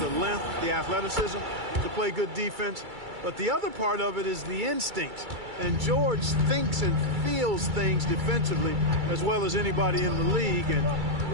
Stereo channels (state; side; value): late; left; 2.3 ms